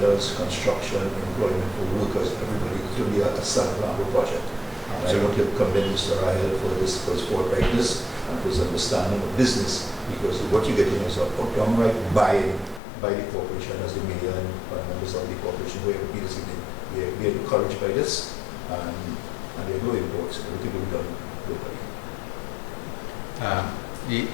construction, employment for workers, everybody. It will be a San Fernando project. And I want to commend Mr. Rahael for his forthrightness and for his understanding of business, because what you're getting is a downright buy-in by the corporation as the mayor and members of the corporation. We are encouraged by this, and there are no imports. Everything will be done locally.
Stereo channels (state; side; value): drops out; right; at 12.8 s